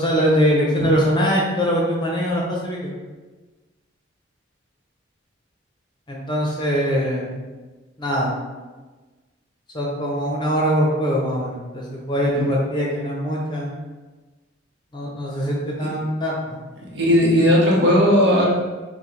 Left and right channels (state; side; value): normal; both; correlation 0.41